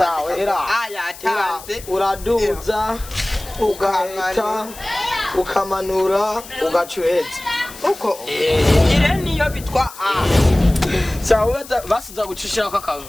era yatanze uraduza ugahita ukamanura ugacuheza uko ire niyo bitwa a sawa basuza gucishira kwa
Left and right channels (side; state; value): left; noise; hiss, 16 dB below the sound